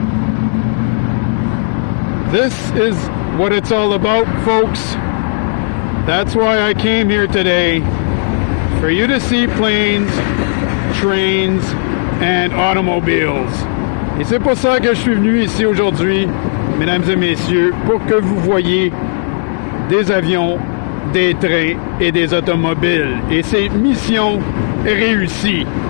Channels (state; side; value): silent; right; digital silence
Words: This is what it's all about, folks. That's why I came here today. For you to see planes, trains, and automobiles. Et c'est pour ça que je suis venu ici aujourd'hui, mesdames et messieurs, pour que vous voyiez des avions, des trains et des automobiles. Et c'est mission réussie.